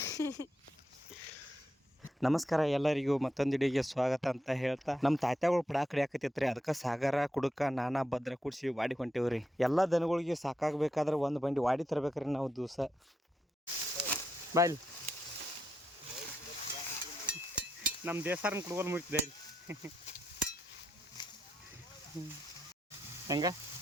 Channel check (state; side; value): normal; both; correlation 0.83